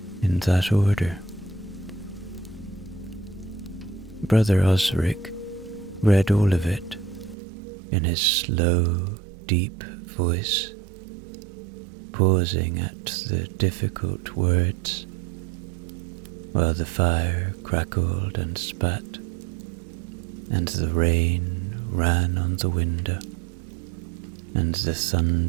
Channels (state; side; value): drops out; left; at 7.4 s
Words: in that order. Brother Osric read all of it in his slow, deep voice, pausing at the difficult words, while the fire crackled and spat, and the rain ran on the window, and the